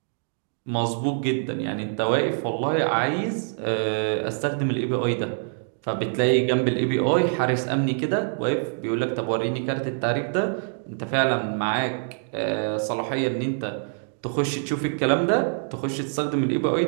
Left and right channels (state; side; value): silent; left; digital silence